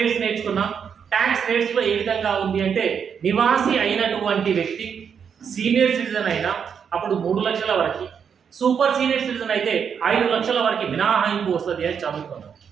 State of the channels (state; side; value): quieter; left; 7.1 dB